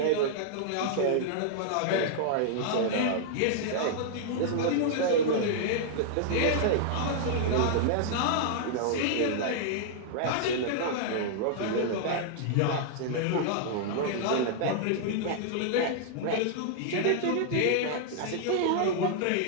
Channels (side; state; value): both; different; correlation -0.01